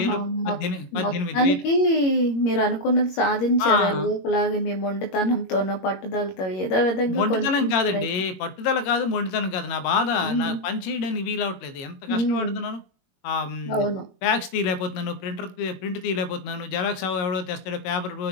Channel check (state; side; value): late; right; 21 ms